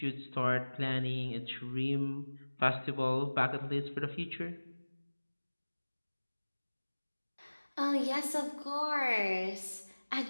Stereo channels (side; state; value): both; inverted; correlation -1.00